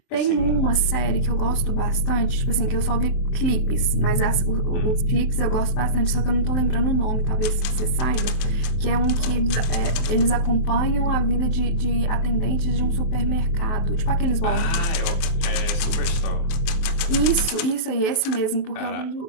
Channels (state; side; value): late; right; 23 ms